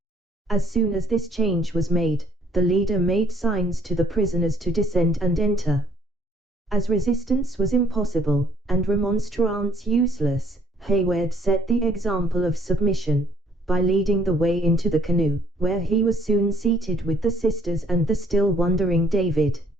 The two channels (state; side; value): normal; both; correlation 0.63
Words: As soon as this change was made, the leader made signs to the prisoners to descend and enter. As resistance was impossible, and remonstrance useless, Hayward set the example of submission, by leading the way into the canoe, where he was soon seated with the sisters and the still wondering David.